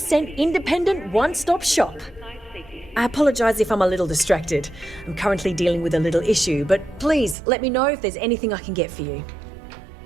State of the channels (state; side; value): drops out; left; at 7.4 s